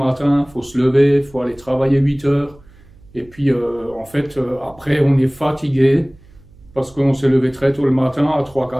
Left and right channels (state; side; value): noise; right; hum, 26 dB below the sound